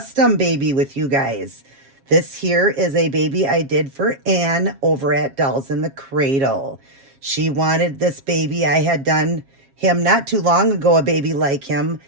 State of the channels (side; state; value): left; late; 7.4 ms